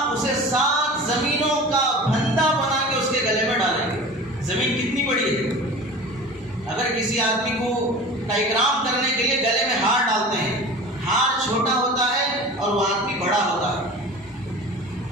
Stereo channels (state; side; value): normal; both; correlation 0.37